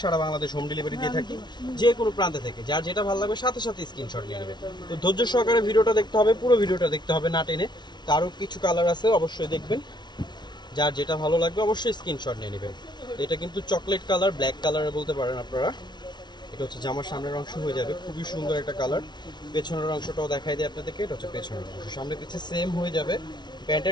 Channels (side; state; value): right; late; 0.21 ms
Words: সারা বাংলাদেশ হোম ডেলিভারি দিয়ে থাকি যে কোনো প্রান্তে থেকে। যার যেটা ভালো লাগবে সাথে সাথে স্ক্রিনশট নিয়ে নেবেন। তো ধৈর্য সহকারে ভিডিওটা দেখতে হবে, পুরো ভিডিওটা দেখতে হবে না টেনে। তো আরও কিছু কালার আছে, অবশ্যই দেখবেন। যার যেটা ভালো লাগবে অবশ্যই স্ক্রিনশট নিয়ে নেবেন। এটা কিন্তু চকলেট কালার, ব্ল্যাক কালারে বলতে পারেন আপনারা। এটা হচ্ছে জামার সামনের অংশ হয়ে যাবে, খুবই সুন্দর একটা কালার। পেছনের অংশটাও দেখাই দিই আপনাদেরকে, এটা হচ্ছে পেছনের অংশ, সামনে পিছে সেম হয়ে যাবে।